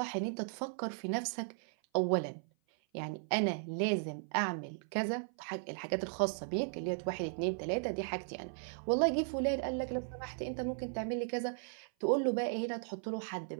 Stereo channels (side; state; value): left; silent; 53 dB below the other